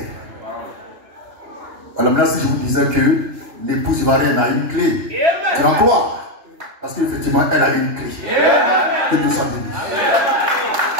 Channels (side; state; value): left; late; 2.9 ms